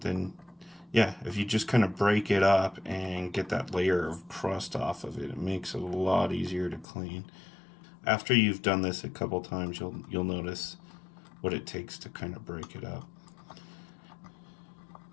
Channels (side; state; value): right; drops out; at 6.9 s